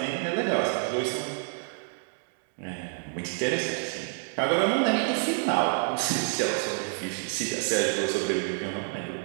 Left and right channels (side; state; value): left; silent; 59 dB below the other